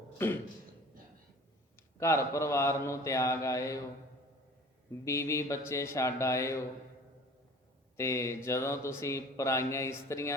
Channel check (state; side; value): normal; both; correlation 0.45